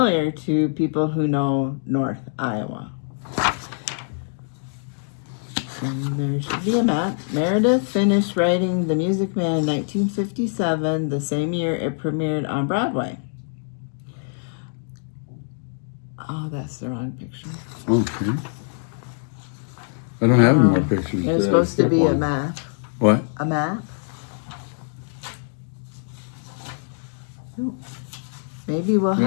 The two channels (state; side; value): silent; right; digital silence